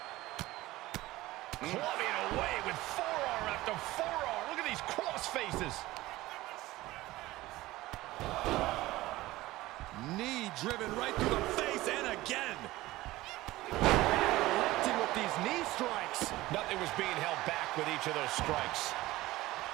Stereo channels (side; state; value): left; quieter; 17.9 dB